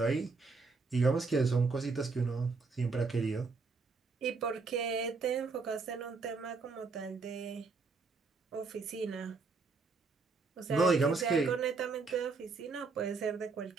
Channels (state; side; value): quieter; left; 4.3 dB